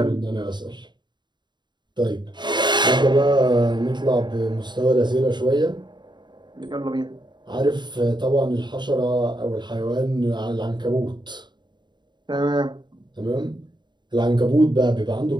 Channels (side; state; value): left; late; 0.22 ms